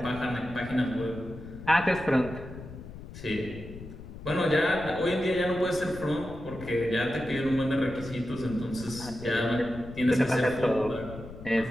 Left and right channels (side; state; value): left; noise; rumble, 13 dB below the sound